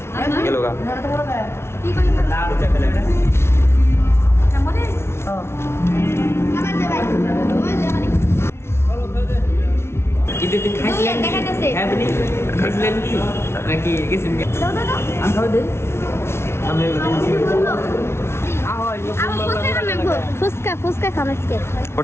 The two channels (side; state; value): right; late; 0.12 ms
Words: গেল গা। ফুচকা ফুচকা খামাসকে